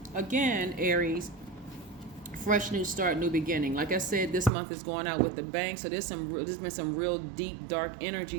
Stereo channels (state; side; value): drops out; left; at 4.5 s